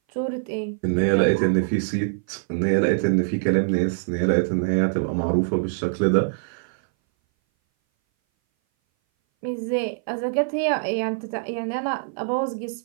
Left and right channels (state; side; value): silent; left; 59 dB below the other